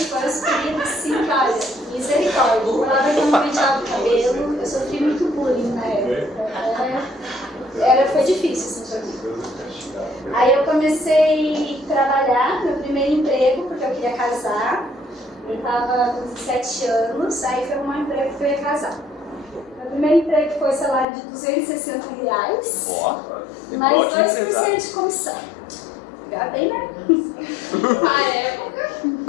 foram os queridos assim, olha, misericórdia. Eu falava que eu não penteava o cabelo, eu sofri muito bullying na época. Foi difícil, assim, pra mim. Aí eu comecei a trabalhar, meu primeiro emprego, porque eu queria casar. Eu estava com 17 anos, aí foi um emprego que eu ia casar. Meu primeiro emprego foi salário de R$260, Ó, mais ótimo 2% empresário. de comissão. Já bem, né? Na época.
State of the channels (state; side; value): drops out; right; at 21.1 s